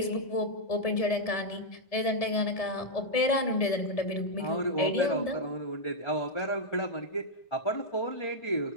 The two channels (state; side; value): late; right; 1.7 ms